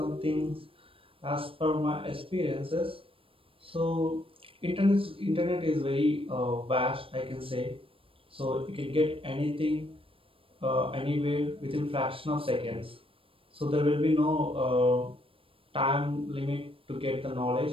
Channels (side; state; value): left; late; 0.26 ms